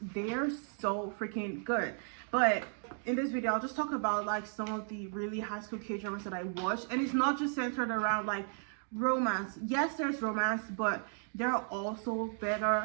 they're so freaking good. But in this video, I'll just talk about like some of the really high school K-dramas that I watched, and it's not just centered around like romance. Yes, there's romance, but there are also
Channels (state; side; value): silent; left; 55 dB below the other